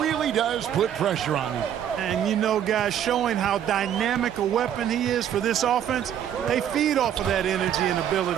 really does put pressure on you. And, you know, guys, showing how dynamic a weapon he is for this offense, they feed off of that energy and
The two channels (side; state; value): left; quieter; 9.8 dB